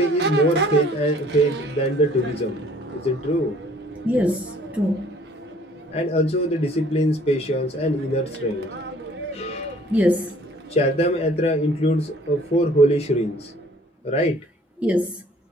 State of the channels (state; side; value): normal; both; correlation 0.56